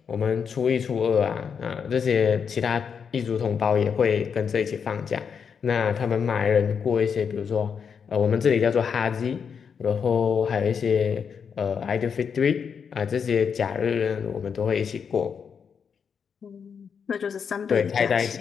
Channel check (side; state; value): right; quieter; 6.7 dB